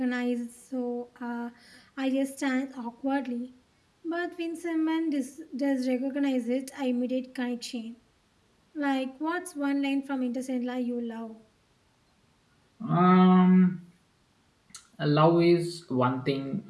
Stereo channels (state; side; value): identical; both; correlation 1.00